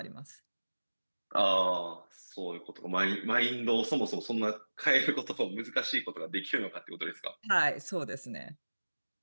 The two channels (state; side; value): inverted; both; correlation -1.00